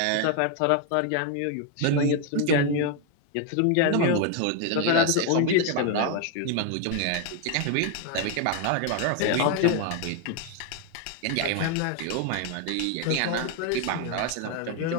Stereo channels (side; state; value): both; different; correlation 0.01